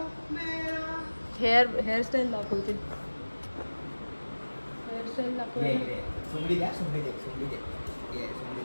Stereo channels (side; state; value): both; inverted; correlation -1.00